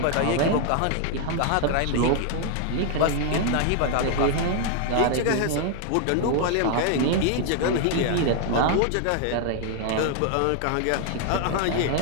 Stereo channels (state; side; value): different; both; correlation 0.00